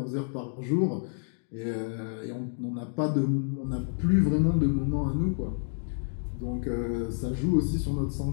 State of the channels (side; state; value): right; silent; digital silence